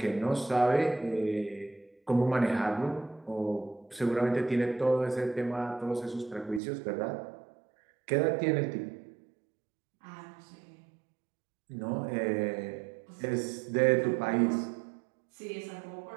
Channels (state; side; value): drops out; left; at 6.6 s